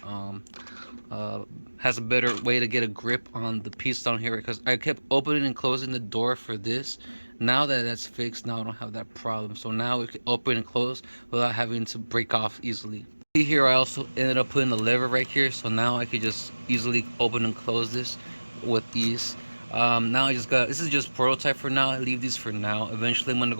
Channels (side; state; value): both; inverted; correlation -1.00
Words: has a better way to get a grip on the piece down here, because I kept opening and closing the door for this. Now that that's fixed, now I don't have that problem, so now we can open and close without having to break off easily. See here, I also ended up putting the lever right here, so now I could just easily open and close this with ease. Now I just got, this is just prototype for now. I leave these for now. Eventually I'm gonna